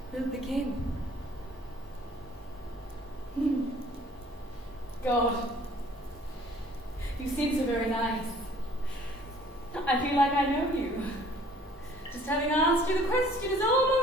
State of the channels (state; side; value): normal; both; correlation 0.55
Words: will begin. God, you seem so very nice. I feel like I know you. Just having asked you the question is